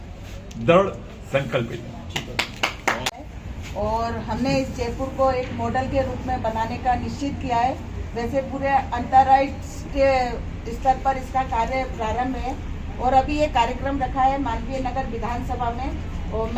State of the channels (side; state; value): both; identical; correlation 1.00